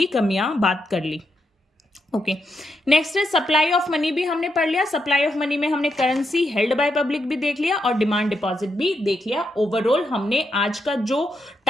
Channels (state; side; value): normal; both; correlation 0.81